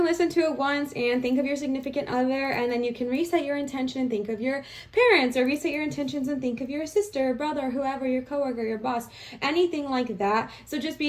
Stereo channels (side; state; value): both; identical; correlation 1.00